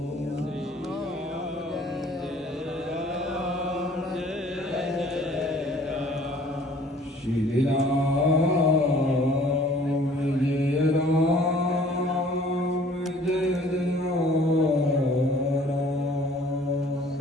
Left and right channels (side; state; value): both; normal; correlation 0.54